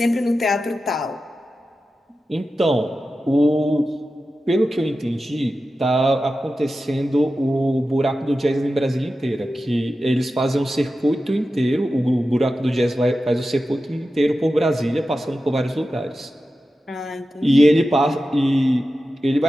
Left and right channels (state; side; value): normal; both; correlation 0.93